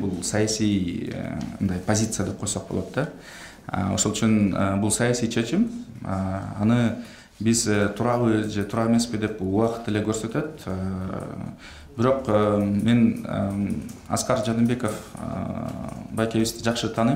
саясий позиция деп койсок болот да. Ошол үчүн бул саясий чечим. Аны биз турабы же туура эмеспи деп убакыт эле көрсөтөт. Бирок мен Аскар Жаныбеков байкебизди жакшы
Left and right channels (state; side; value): identical; both; correlation 1.00